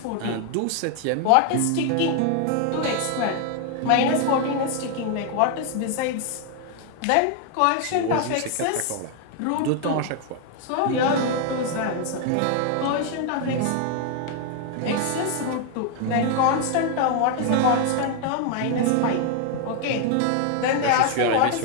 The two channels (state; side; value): different; both; correlation 0.00